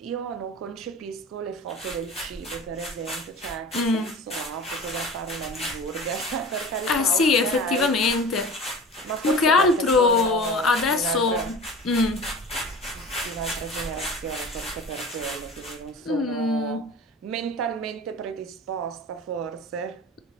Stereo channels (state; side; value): normal; both; correlation 0.37